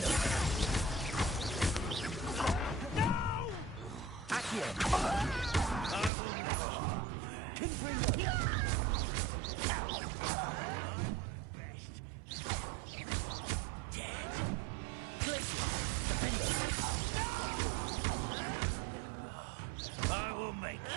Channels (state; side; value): drops out; left; at 6.1 s